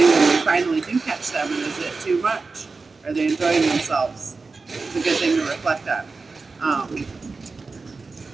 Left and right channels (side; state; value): left; quieter; 4.1 dB